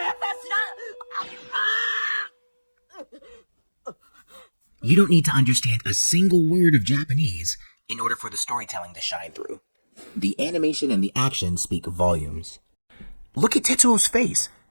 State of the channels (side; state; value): both; inverted; correlation -1.00